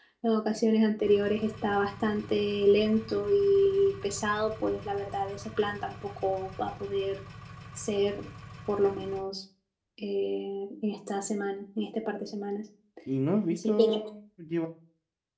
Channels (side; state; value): both; identical; correlation 1.00